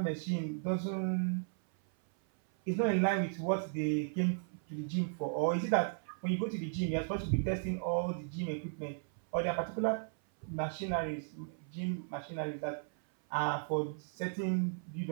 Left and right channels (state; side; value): silent; left; 54 dB below the other